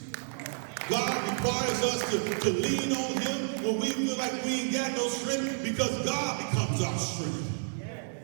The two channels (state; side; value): silent; left; digital silence